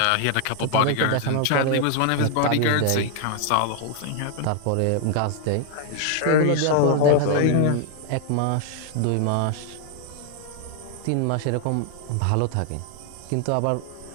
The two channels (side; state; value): both; different; correlation 0.00